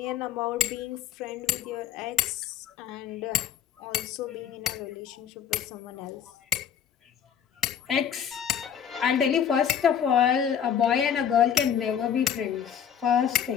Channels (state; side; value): quieter; right; 8.6 dB